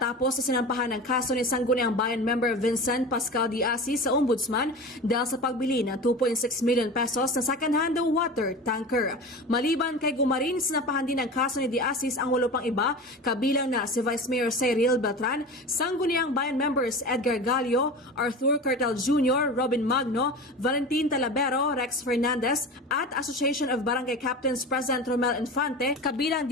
na sinampahan ng kaso ni Sangguniang Bayan member Vincent Pascal D. Asis sa Ombudsman dahil sa pagbili ng 2.6 million pesos na second-hand water tanker. Maliban kay Gumarin, sinampahan din ng kaso ni D. Asis ang 8 pang iba, kabilang na si Vice Mayor Cyril Beltran, Sangguniang Bayan members Edgar Gallo, Arthur Cartel Jr., Robin Magno, Valentin Talavero, Rex Fernandez at Association of Barangay Captains President Romel Infante, kabilang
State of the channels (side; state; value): both; normal; correlation 0.31